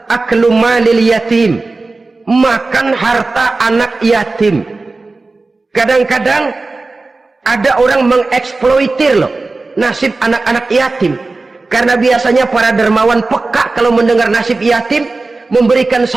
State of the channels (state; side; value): quieter; left; 3.5 dB